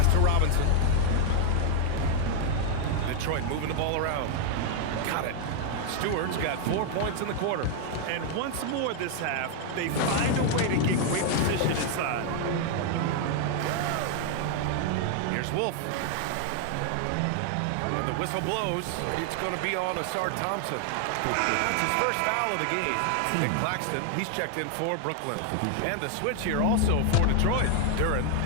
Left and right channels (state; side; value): different; both; correlation 0.00